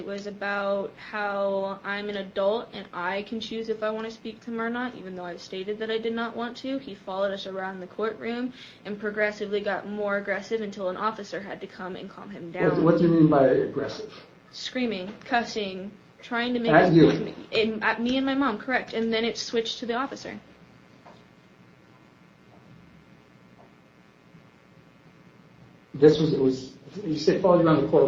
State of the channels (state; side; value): identical; both; correlation 1.00